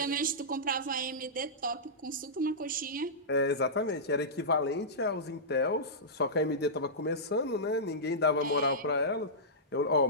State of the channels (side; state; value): both; normal; correlation -0.15